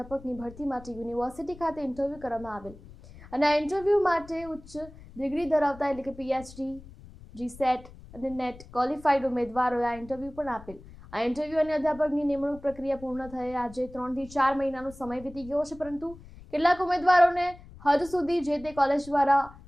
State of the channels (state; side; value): noise; left; rumble, 19 dB below the sound